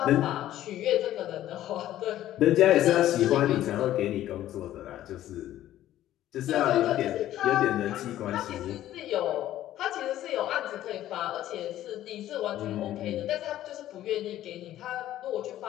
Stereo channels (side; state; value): right; quieter; 13.2 dB